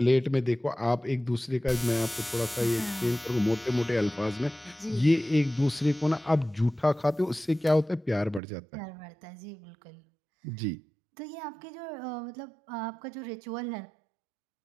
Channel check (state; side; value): drops out; left; at 8.4 s